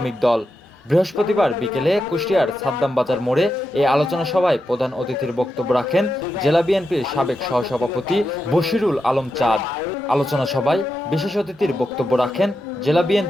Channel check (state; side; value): normal; both; correlation 0.87